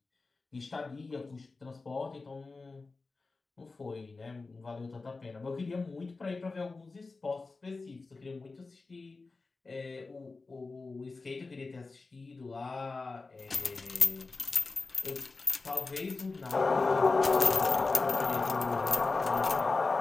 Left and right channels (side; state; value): right; quieter; 3.8 dB